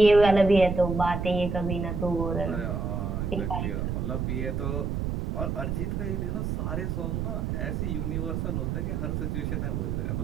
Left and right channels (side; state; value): right; noise; rumble, 1 dB below the sound